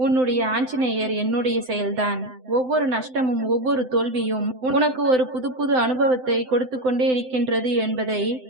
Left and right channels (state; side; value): late; left; 7.8 ms